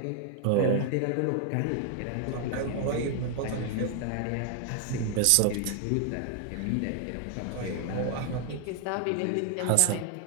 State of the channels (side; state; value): both; different; correlation 0.00